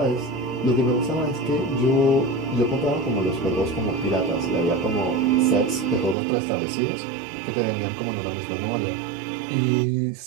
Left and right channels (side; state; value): left; drops out; at 6.2 s